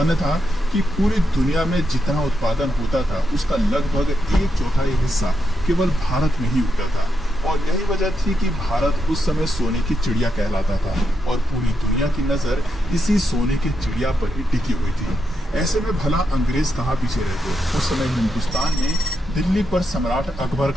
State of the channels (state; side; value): normal; both; correlation 0.83